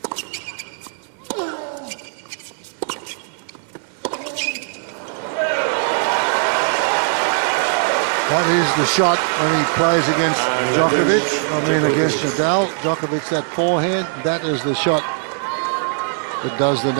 That is the shot when he plays against Djokovic, against Nadal. Djokovic, that forehand, that is the shot that does the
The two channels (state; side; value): silent; left; digital silence